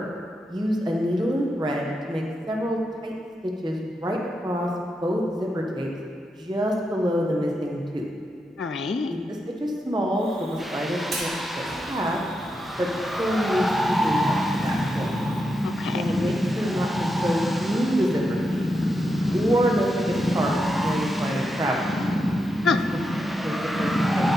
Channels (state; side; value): normal; both; correlation 0.85